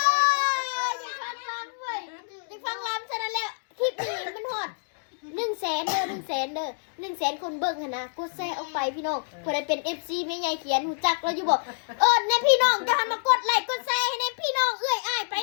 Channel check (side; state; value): right; silent; digital silence